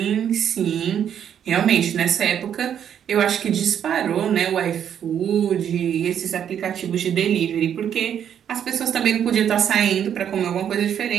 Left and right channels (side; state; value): left; quieter; 9.1 dB